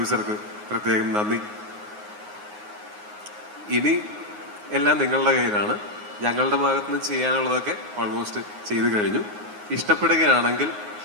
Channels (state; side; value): late; left; 9.6 ms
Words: പ്രത്യേകം നന്ദി. ഇനി എല്ലാം നിങ്ങളുടെ കയ്യിലാണ്. ഞങ്ങളുടെ ഭാഗത്തുനിന്ന് ചെയ്യാനുള്ളതൊക്കെ ഓൾമോസ്റ്റ് ചെയ്തു കഴിഞ്ഞു. ഇഷ്ടപ്പെടുകയാണെങ്കിൽ